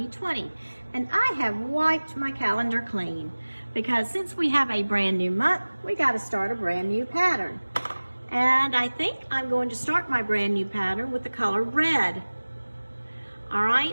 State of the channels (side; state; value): both; inverted; correlation -1.00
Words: and I have wiped my calendar clean because since we have a brand new month, we got to start a brand new pattern. And I think I'm going to start my brand new pattern with the color red. All